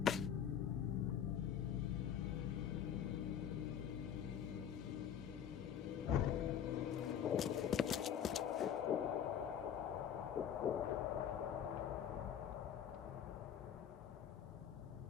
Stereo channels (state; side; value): quieter; right; 9.1 dB